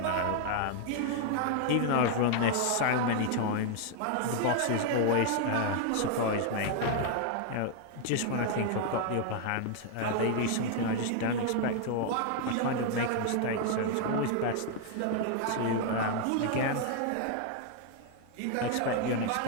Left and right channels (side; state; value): both; different; correlation 0.00